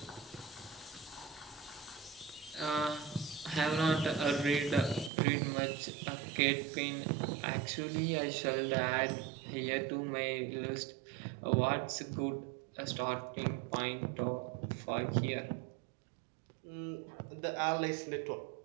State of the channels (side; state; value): left; drops out; at 5.1 s